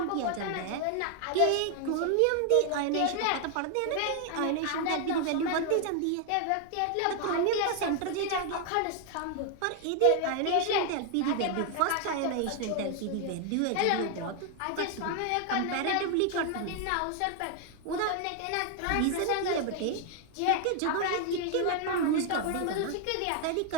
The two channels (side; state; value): both; different; correlation 0.00